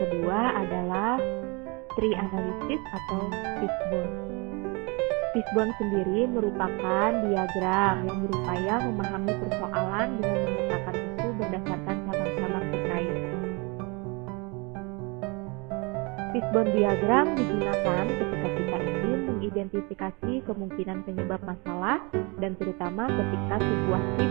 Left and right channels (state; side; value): quieter; left; 29.5 dB